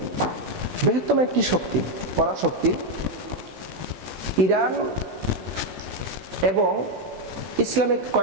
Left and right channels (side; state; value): left; late; 16 ms